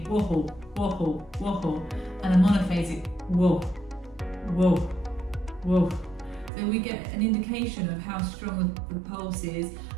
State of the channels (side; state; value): left; drops out; at 6.5 s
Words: whoa, wobble, wobble, and a monophasic whoa, whoa, whoa. So we get an indication of how strong the pulse is